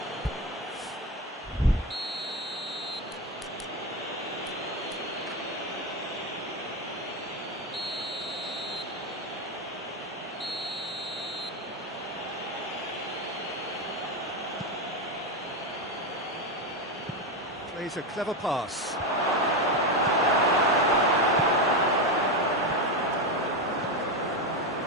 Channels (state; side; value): normal; both; correlation 0.13